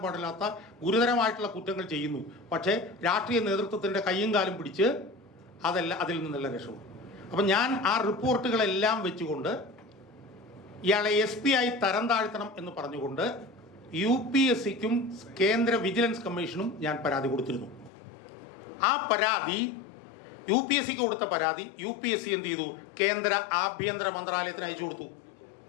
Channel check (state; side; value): drops out; right; at 17.9 s